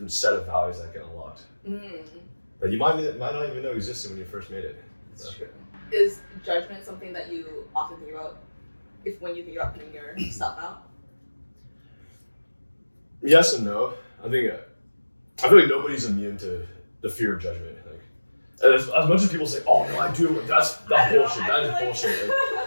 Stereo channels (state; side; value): inverted; both; correlation -1.00